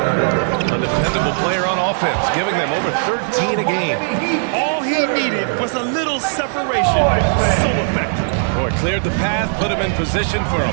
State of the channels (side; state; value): left; silent; digital silence